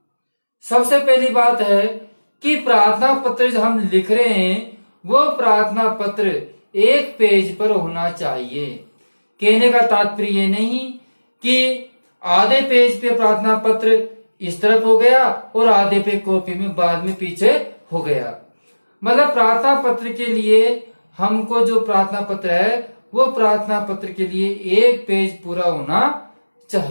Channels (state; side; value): inverted; both; correlation -1.00